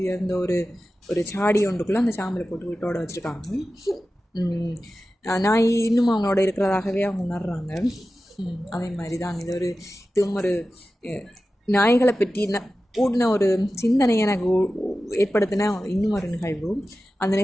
உயர்ந்த ஒரு சாடி ஒன்றுக்குள்ளே அந்த சாம்பலை போட்டு வீட்டோட வச்சுருக்காங்க. நாய் இன்னும் அவங்களோட இருக்கிறதாகவே அவங்க உணர்றாங்க. அதே மாதிரி தான் இதுவும் ஒரு நாய்களை பற்றி கூடின ஒரு சிந்தனை எனக்கு ஏற்படுத்தின இன்னும் ஒரு நிகழ்வு. அந்த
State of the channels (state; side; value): normal; both; correlation 0.94